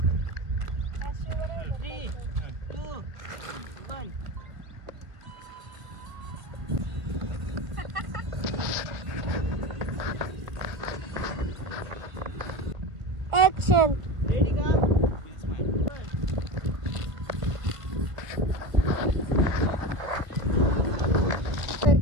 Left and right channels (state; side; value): late; left; 1.7 ms